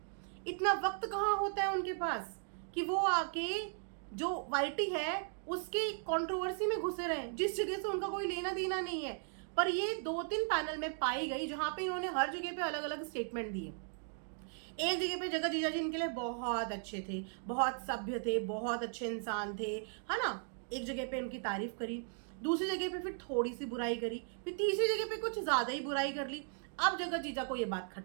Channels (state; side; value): silent; left; 53 dB below the other